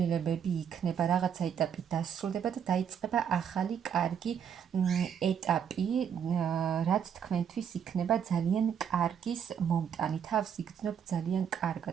იქნება, რაღაცა ეტაპი დასრულდება და დაიწყება ახალი კარგი ეტაპი, რაც თქვენთვის იქნება ძალიან კარგის მომტანი, თავს იგრძნობთ ძალიან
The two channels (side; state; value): left; quieter; 8.1 dB